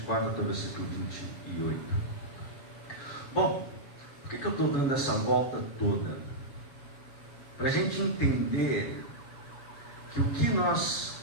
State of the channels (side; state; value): right; late; 7.1 ms